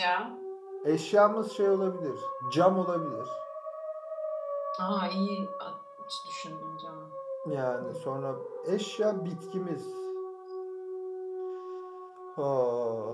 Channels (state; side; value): identical; both; correlation 1.00